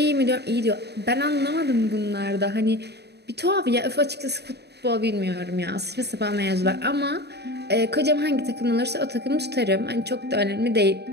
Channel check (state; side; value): late; left; 0.48 ms